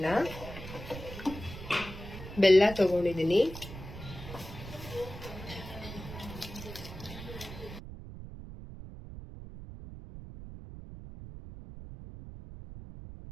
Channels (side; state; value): right; noise; rumble, 12 dB below the sound